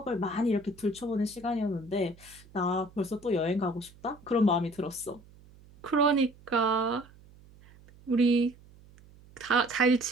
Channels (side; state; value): right; noise; hum, 24 dB below the sound